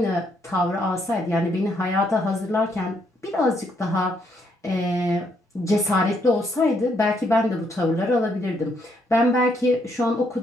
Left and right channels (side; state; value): both; normal; correlation 0.73